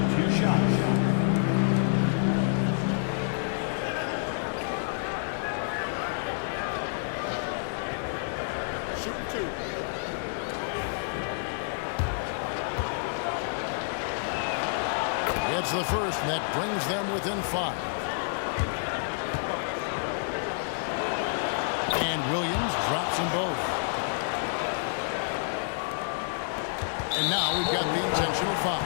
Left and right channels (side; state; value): right; silent; digital silence